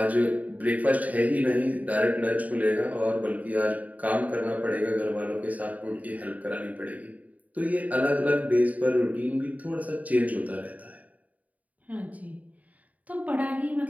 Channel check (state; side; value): late; left; 0.072 ms